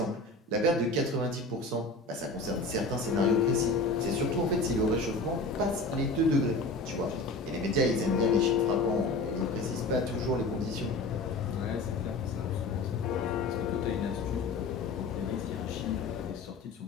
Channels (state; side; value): quieter; right; 3.1 dB